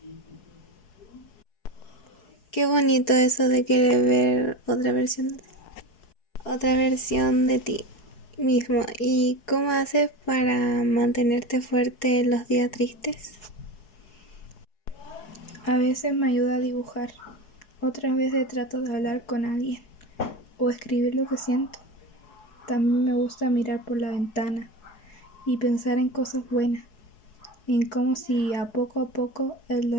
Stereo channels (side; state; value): right; late; 4.7 ms